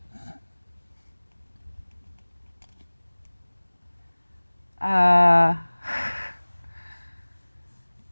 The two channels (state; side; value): inverted; both; correlation -1.00